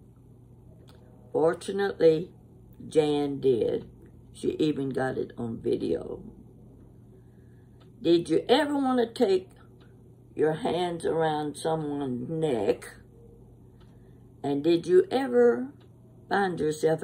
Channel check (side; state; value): both; identical; correlation 1.00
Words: Fortunately, Jan did. She even got it on video. Did you ever want to take your hands around someone's neck? And did you ever find yourself